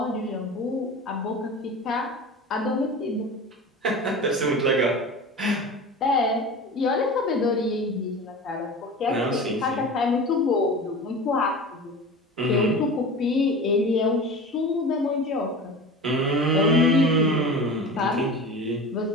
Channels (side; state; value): both; normal; correlation 0.33